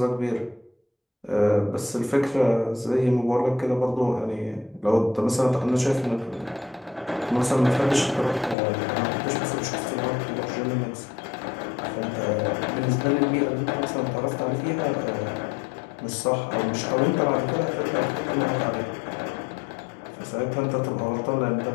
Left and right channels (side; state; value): right; drops out; at 8.6 s